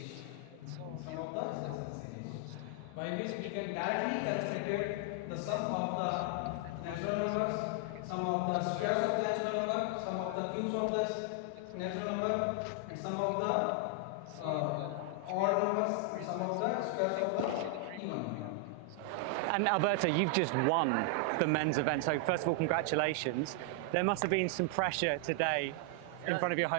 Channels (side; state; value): both; different; correlation 0.00